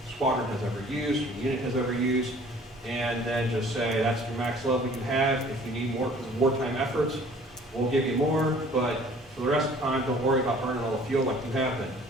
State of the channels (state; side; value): normal; both; correlation 0.52